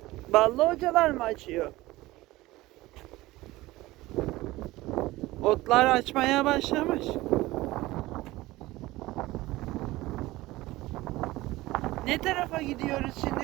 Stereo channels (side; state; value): left; quieter; 18.6 dB